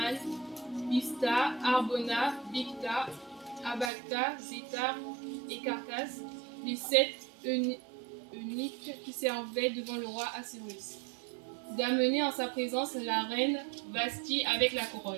Bista, Arbona, Bicta, Abacta, Zétar et Carcas, les 7 eunuques qui servaient devant le roi Assuérus. D'amener en sa présence la reine Vashti avec la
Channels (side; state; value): left; drops out; at 3.9 s